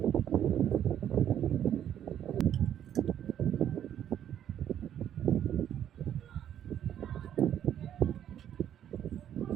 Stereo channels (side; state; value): left; quieter; 10.3 dB